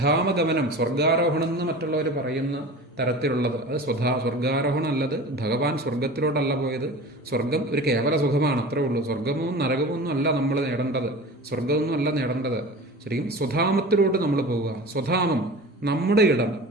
സ്വർഗാരോഹണം എന്ന് മറ്റുള്ളവർ പറയുന്ന തരത്തിലുള്ളത്, അത് സ്വർഗാരോഹണം അല്ലത്. ഭഗവാൻ സ്വർഗത്തിലോട്ടല്ല പോയത്. സ്വർഗം ഒരു കേവല സുഖമാണ്, അത്രേ ഉള്ളൂ. സ്വർഗമോ നരകമോ ഒന്നും അല്ല നമ്മൾ നേടേണ്ടത്, സ്വർഗമൊന്നും അല്ല നേടേണ്ടത്. ശരിക്കും സ്വധാമത്തിലോട്ട് നമ്മൾ പോവുക. സ്വധാമം നമ്മുടെ ഇടം,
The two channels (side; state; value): both; normal; correlation 0.36